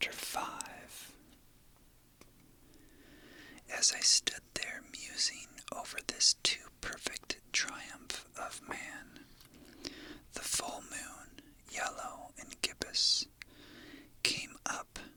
5. As I stood there musing over this too perfect triumph of man, the full moon, yellow and gibbous, came up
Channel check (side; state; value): both; identical; correlation 1.00